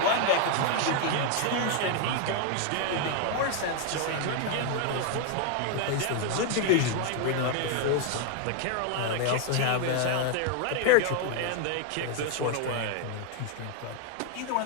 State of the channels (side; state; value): both; different; correlation 0.00